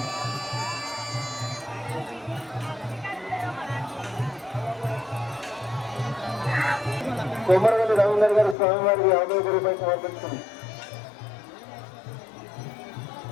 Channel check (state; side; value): drops out; right; at 8.6 s